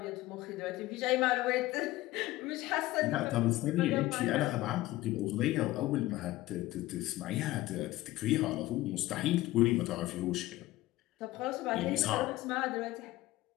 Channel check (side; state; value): right; quieter; 17.2 dB